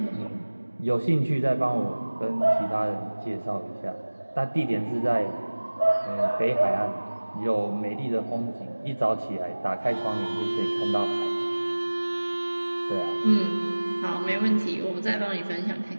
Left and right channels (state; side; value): inverted; both; correlation -1.00